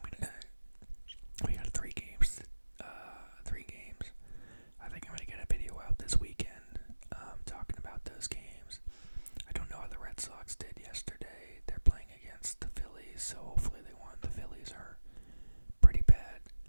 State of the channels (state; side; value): inverted; both; correlation -1.00